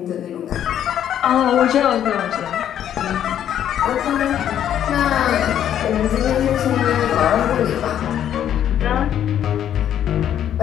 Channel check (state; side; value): quieter; right; 10.3 dB